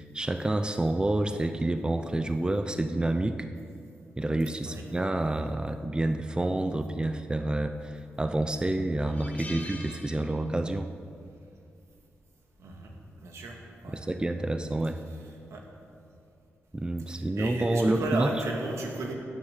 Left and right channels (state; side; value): normal; both; correlation 0.94